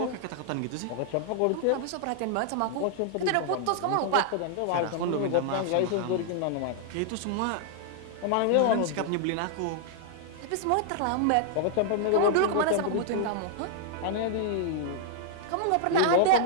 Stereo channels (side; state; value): both; different; correlation -0.01